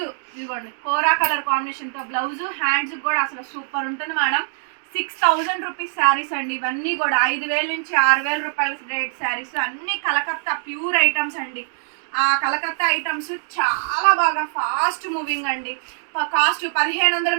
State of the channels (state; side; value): silent; left; digital silence